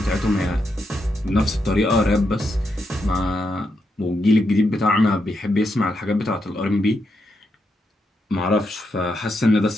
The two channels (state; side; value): normal; both; correlation 0.83